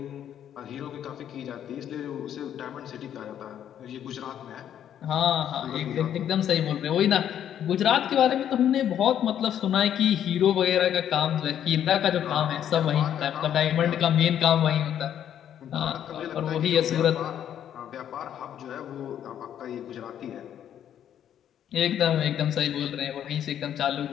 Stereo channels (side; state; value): right; quieter; 10.0 dB